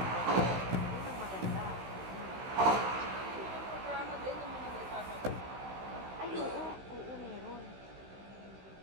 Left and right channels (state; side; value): late; left; 16 ms